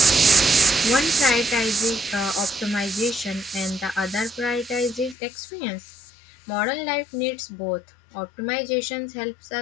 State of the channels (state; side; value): drops out; right; at 5.2 s